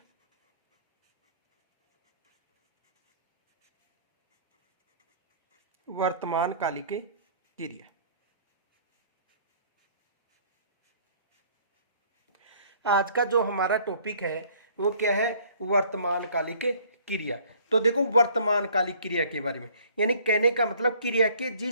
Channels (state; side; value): inverted; both; correlation -0.56